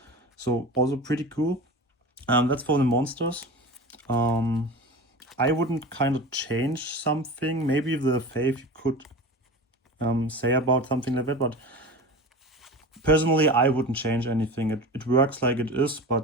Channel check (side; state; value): both; normal; correlation 0.32